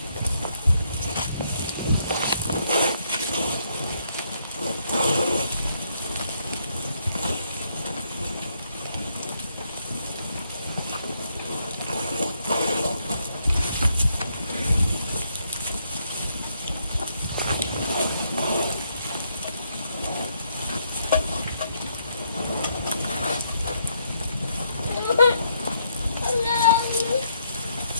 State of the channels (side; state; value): both; inverted; correlation -0.74